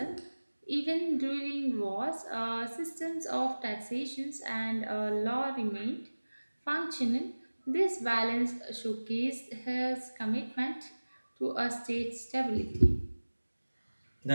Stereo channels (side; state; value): both; inverted; correlation -1.00